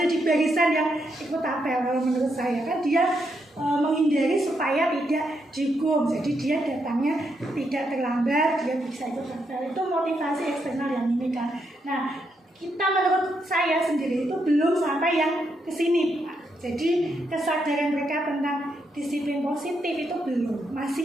di barisan yang ikut apel. Kalau menurut saya kan dia menghindari supaya tidak dihukum, jadi dia datangnya tidak terlambat, dia bisa ikut apel. Itu motivasi eksternal yang ini kan. Nah, kita menurut saya sendiri itu belum sampai yang kesini Pak. Jadi kesadaran mereka tentang disiplin positif itu belum,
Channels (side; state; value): both; normal; correlation 0.80